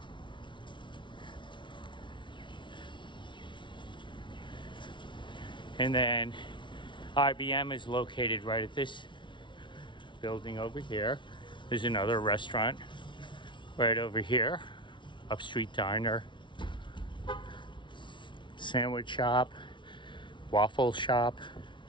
And then IBM is located right at this building over here. There's another restaurant right over here, Upstreet Diner, sandwich shop, waffle shop.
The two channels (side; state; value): right; late; 0.24 ms